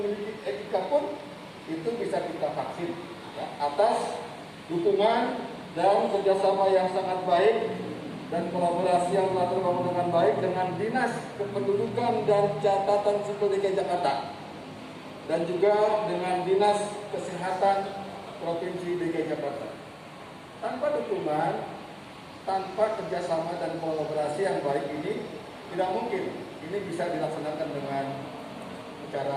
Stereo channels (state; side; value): identical; both; correlation 1.00